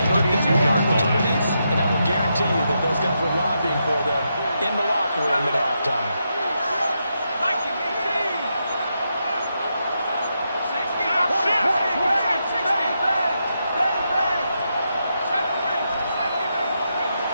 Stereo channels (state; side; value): inverted; both; correlation -0.83